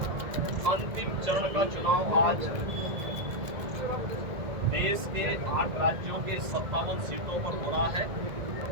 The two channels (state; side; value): late; left; 1.8 ms